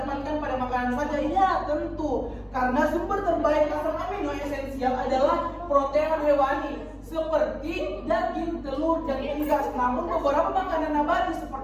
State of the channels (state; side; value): identical; both; correlation 1.00